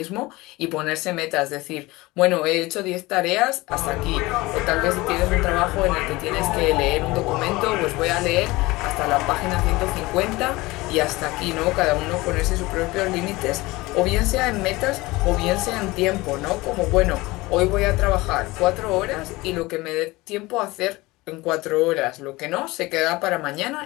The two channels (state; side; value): quieter; right; 21.1 dB